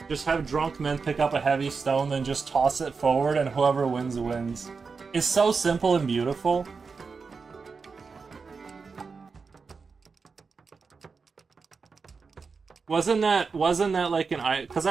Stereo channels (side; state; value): left; quieter; 4.9 dB